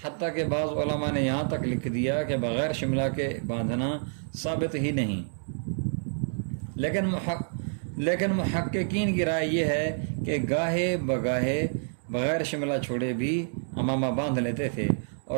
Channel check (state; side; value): silent; left; digital silence